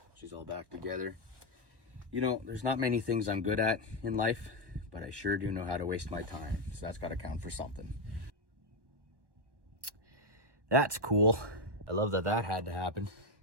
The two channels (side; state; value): left; late; 1.1 ms